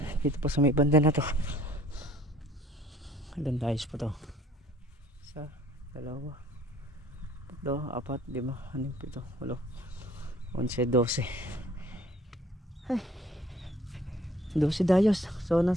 Dito pa sa may banda na to. Ilan dayos pa to? Isa, dalawa, tatlo, apat, lima, anim, pito, walo, 11, 12. Ay, 12 dayos. So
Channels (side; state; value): both; normal; correlation 0.56